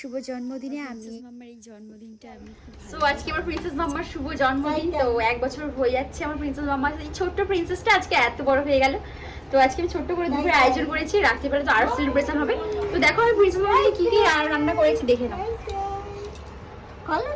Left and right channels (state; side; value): identical; both; correlation 1.00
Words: জন্মদিনে আমি মাম্মার এই জন্মদিনটা আমি সো আজকে আমার প্রিন্সেস মাম্মার শুভ জন্মদিন। তো 1 বছর হয়ে যাচ্ছে আমার প্রিন্সেস মাম্মার। এই ছোট্ট প্রিন্সেসটা আজকে এত বড় হয়ে গেল। তো আজকে আমি ছোট্ট করে দুপুরে আয়োজন করেছি, রাত্রিবেলা তো আরো সেলিব্রেশন হবে। তো দেখো আমি প্রিন্সেস মাম্মাকে কি কি রান্না করেছি দেখে নাও। কলো